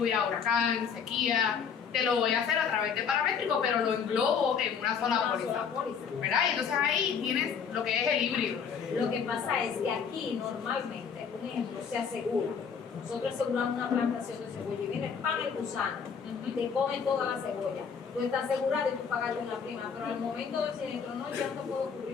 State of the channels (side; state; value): right; quieter; 6.6 dB